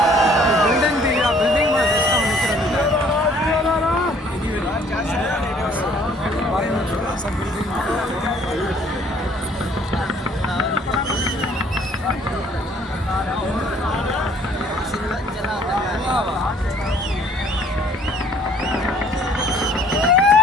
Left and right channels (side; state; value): both; normal; correlation 0.58